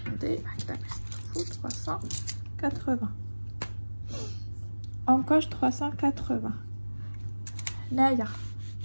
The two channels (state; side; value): inverted; both; correlation -1.00